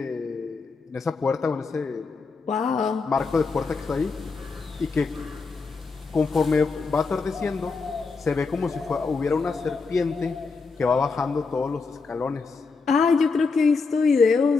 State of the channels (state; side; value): quieter; right; 4.5 dB